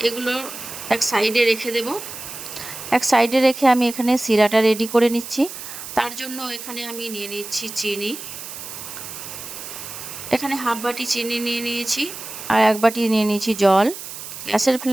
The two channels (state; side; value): noise; right; hiss, 11 dB below the sound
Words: এগুলো এক সাইডে রেখে দেব। এক সাইডে রেখে আমি এখানে সিরাটা রেডি করে নিচ্ছি। তার জন্য এখানে আমি নিয়ে নিচ্ছি চিনি। এখানে 1/2 বাটি চিনি নিয়ে নিয়েছি আর 1 বাটি নিয়ে নিয়েছি জল। গ্যাসের